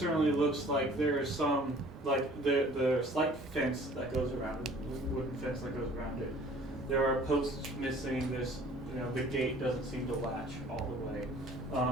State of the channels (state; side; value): normal; both; correlation 0.51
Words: looks like there is some, like the slight fence that goes around it, wooden fence that goes around it. There are posts missing. This, the gate doesn't seem to latch all the way.